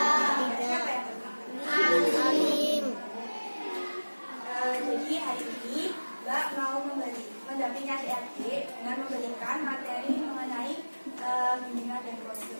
Siapa yang berangkat? Alim. Jadi hari ini Mbak mau mendampingi adik-adik dengan memberikan materi mengenai bimbingan dan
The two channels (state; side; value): inverted; both; correlation -1.00